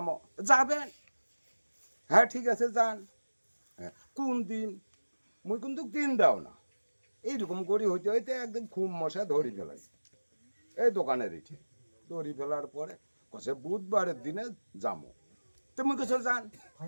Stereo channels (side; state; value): both; inverted; correlation -1.00